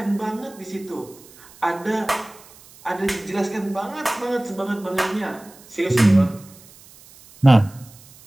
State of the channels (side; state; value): right; noise; hiss, 23 dB below the sound